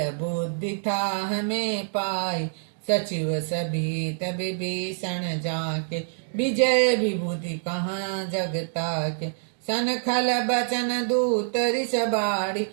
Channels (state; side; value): silent; left; digital silence